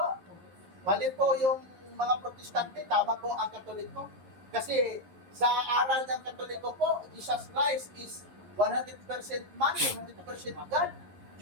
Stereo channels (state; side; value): late; left; 11 ms